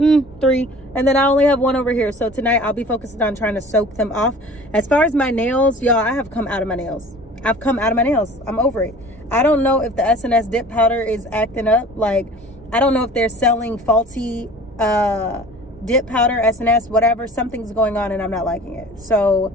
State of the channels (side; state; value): both; normal; correlation 0.45